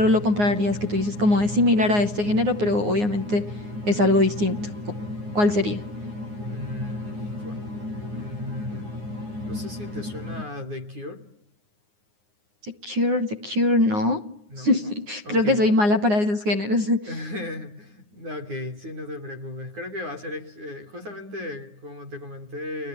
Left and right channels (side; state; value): left; late; 9.6 ms